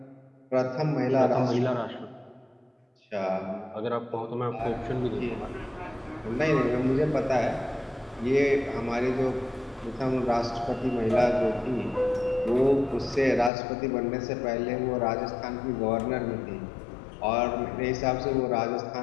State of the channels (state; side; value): drops out; right; at 13.5 s